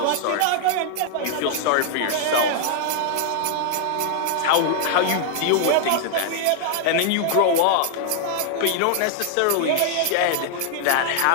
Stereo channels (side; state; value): both; different; correlation 0.00